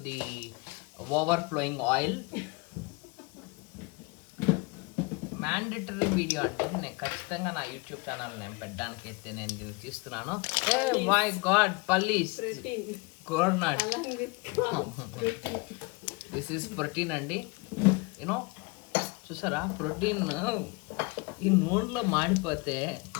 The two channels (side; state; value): right; quieter; 28.1 dB